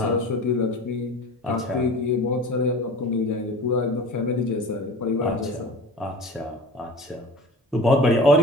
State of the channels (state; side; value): normal; both; correlation 0.36